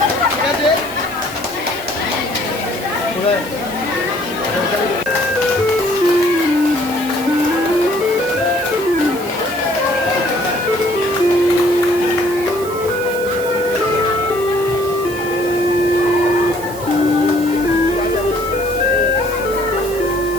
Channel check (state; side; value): noise; right; hiss, 15 dB below the sound